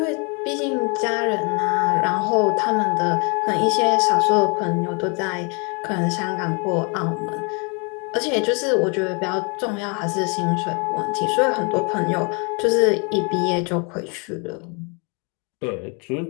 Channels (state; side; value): quieter; right; 34.0 dB